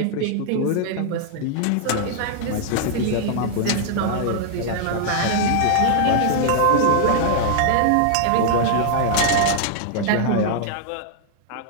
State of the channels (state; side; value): different; both; correlation -0.01